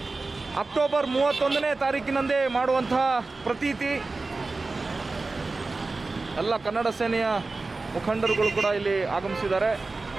ಅಕ್ಟೋಬರ್ 31ನೇ ತಾರೀಕಿನಂದೇ ಮಾಡುವಂತಹ ಪ್ರತೀತಿ. ಎಲ್ಲ ಕನ್ನಡ ಸೇನೆಯ ಮುಖಂಡರುಗಳು ಕೂಡ ಇಲ್ಲಿ ಆಗಮಿಸಿದ್ದಾರೆ.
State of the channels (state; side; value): quieter; left; 3.6 dB